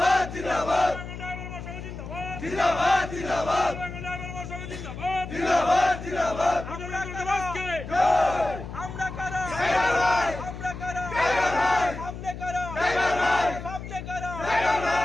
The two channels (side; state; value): left; noise; hum, 10 dB below the sound